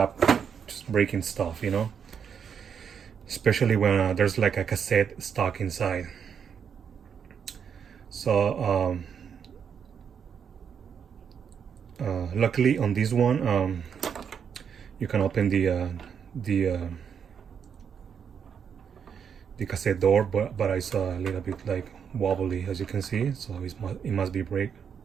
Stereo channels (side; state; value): left; quieter; 7.3 dB